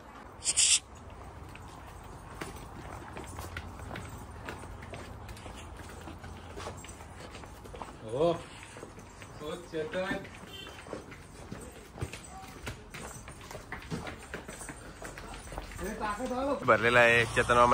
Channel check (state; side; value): identical; both; correlation 1.00